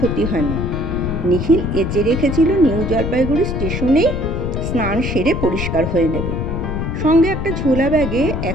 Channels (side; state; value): left; noise; rumble, 3 dB below the sound